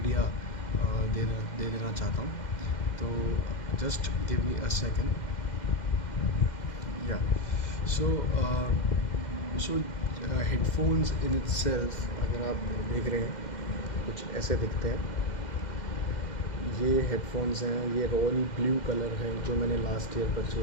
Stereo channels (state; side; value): late; right; 2.1 ms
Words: दे देना चाहता हूँ। तो just give me a second. या सो हेडफोन्स इन इटसेल्फ अगर आप देख रहे हैं कुछ ऐसे दिखते हैं। ये हेडफोन्स हैं, ये रॉयल ब्लू कलर है जो मैंने लास्ट ईयर